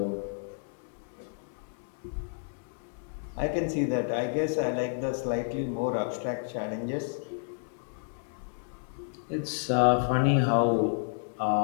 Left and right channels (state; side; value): silent; right; digital silence